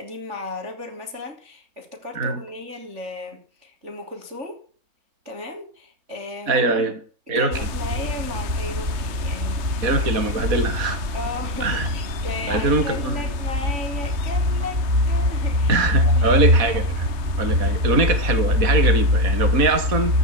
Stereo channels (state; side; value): late; left; 3.3 ms